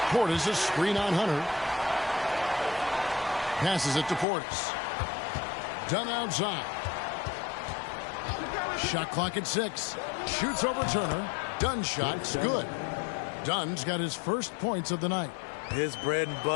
Portis a screen on Hunter. Passes it to Portis. Dunn outside. Shot clock at 6. Shoots over Turner. Dunn's shot's good. Dunn's got his first points of the night. His bread and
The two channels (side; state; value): right; drops out; at 4.2 s